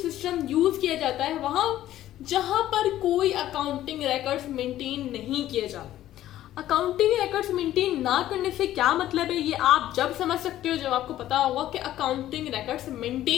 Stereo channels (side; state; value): right; quieter; 13.3 dB